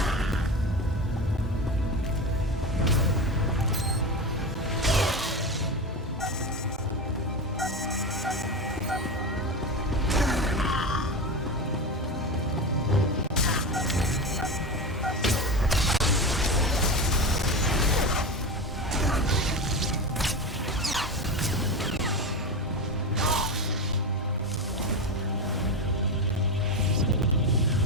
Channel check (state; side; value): normal; both; correlation 0.21